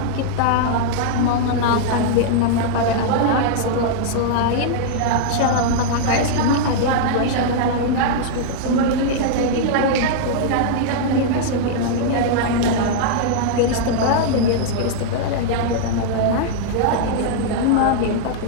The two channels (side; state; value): both; different; correlation -0.02